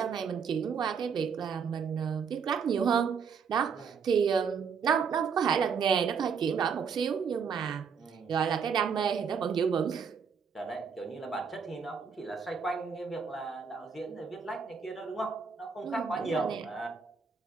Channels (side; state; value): left; quieter; 6.2 dB